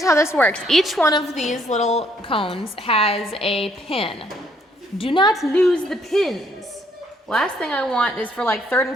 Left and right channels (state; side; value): normal; both; correlation 0.68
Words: how this works. Each one of these little cones has a pin. Do not lose the pins. Last thing I want is for like 3rd and